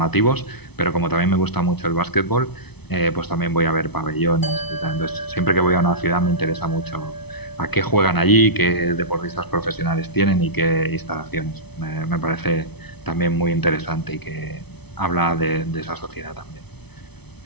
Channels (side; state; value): right; late; 0.99 ms